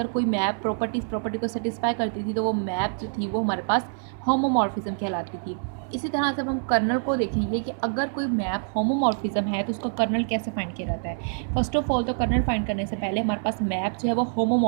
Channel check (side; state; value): left; silent; digital silence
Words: कोई मैप प्रॉपर्टी को सेटिस्फाई करती थी तो वो मैप जो थी वो हमारे पास होमोमॉर्फिज्म कहलाती थी। इसी तरह से अब हम कर्नल को देखेंगे कि अगर कोई मैप होमोमॉर्फिज्म है तो उसका कर्नल कैसे फाइंड किया जाता है। फर्स्ट ऑफ ऑल तो कर्नल फाइंड करने से पहले हमारे पास मैप जो है वो